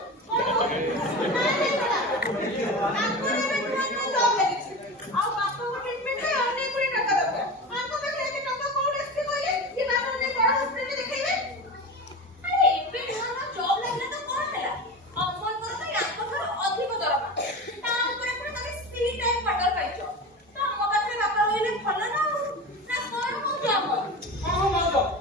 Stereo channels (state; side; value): normal; both; correlation 0.28